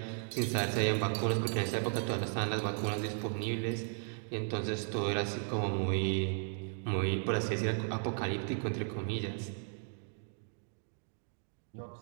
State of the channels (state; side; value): silent; left; 54 dB below the other